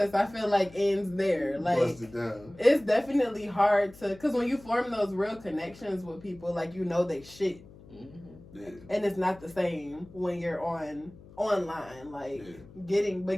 I feel like, ends there. Like, it's definitely hard to... Because when you form those real connections with people, like, you know they shit. Mm-hmm. Yeah. And it's not the same when you're online. Like, getting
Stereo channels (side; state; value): left; noise; hum, 20 dB below the sound